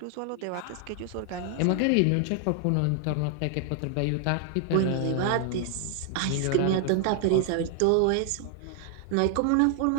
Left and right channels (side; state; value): both; different; correlation 0.00